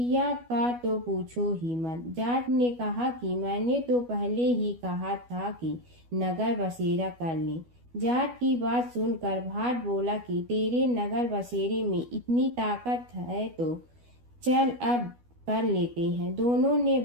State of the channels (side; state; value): left; late; 12 ms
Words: का तो पूछो ही मत। जाट ने कहा कि मैंने तो पहले ही कहा था कि नगर बसेरा कर ले। जाट की बात सुनकर भाट बोला कि तेरे नगर बसेरे में इतनी ताकत है तो चल अब कर लेते हैं। दोनों ने